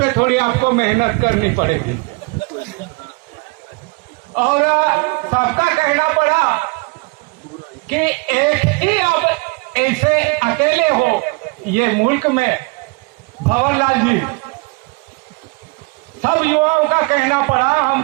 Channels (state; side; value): quieter; left; 29.0 dB